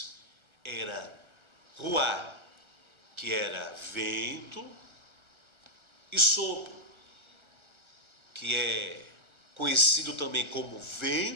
era ruá, que era vento, e sopro, que é conhecido também como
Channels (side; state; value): left; late; 1.3 ms